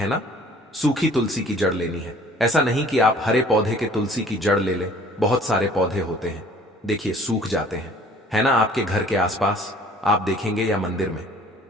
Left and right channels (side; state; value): both; normal; correlation 0.53